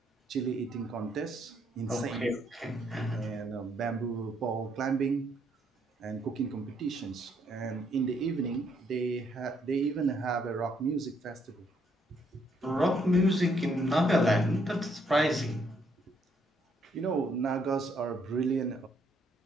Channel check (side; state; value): both; normal; correlation 0.71